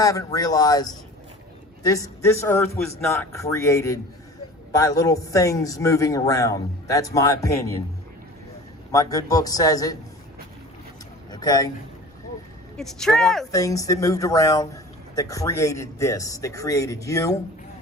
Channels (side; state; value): both; normal; correlation 0.40